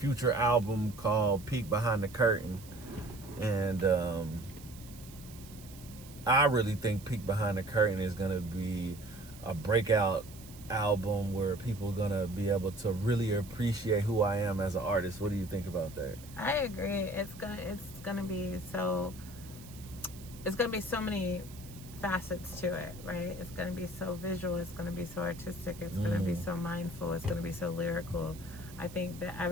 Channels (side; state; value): right; noise; hiss, 19 dB below the sound